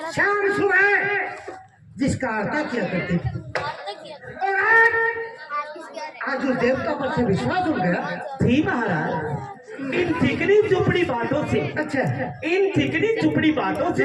शाम सुबह जिसका आरता किया करती थी, और आज उस देवता पर से विश्वास उठ गया। जी महाराज, इन चिकनी चुपड़ी बातों से, अच्छा इन चिकनी चुपड़ी बातों से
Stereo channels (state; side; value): identical; both; correlation 1.00